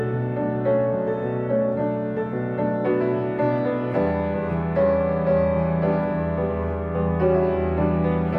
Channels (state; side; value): identical; both; correlation 1.00